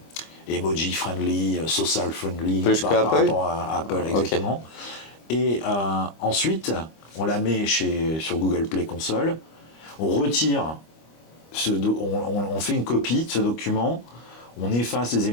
emoji friendly, social friendly par rapport à Apple, exactement. Okay. Et ensuite, on la met sur Google Play Console, on retire, on fait une copie de ce document, on efface les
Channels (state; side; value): late; right; 25 ms